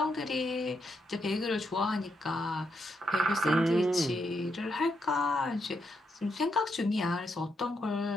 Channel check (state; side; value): normal; both; correlation 0.80